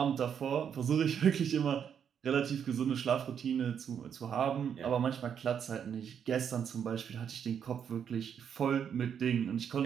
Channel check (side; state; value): left; quieter; 8.0 dB